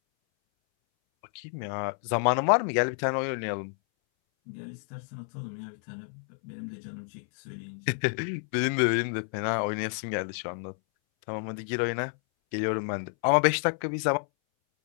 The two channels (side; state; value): right; silent; 58 dB below the other